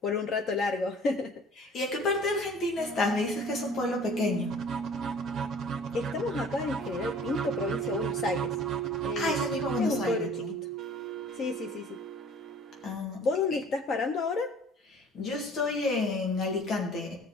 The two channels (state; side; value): normal; both; correlation 0.49